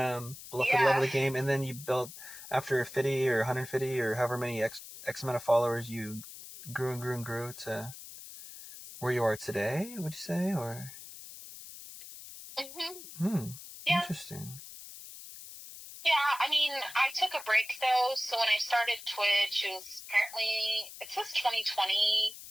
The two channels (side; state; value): left; noise; hiss, 14 dB below the sound